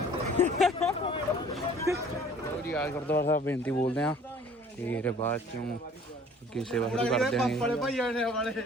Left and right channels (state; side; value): normal; both; correlation 0.52